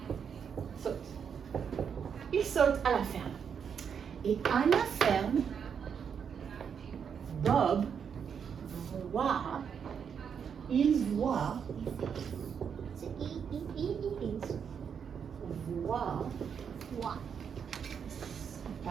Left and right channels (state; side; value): quieter; left; 7.2 dB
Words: Saute. Il saute à la ferme. Et à la ferme, Bob il voit